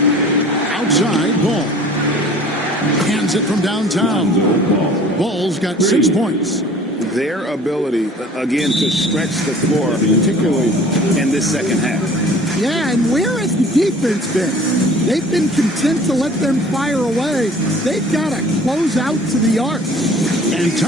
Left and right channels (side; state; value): both; normal; correlation 0.48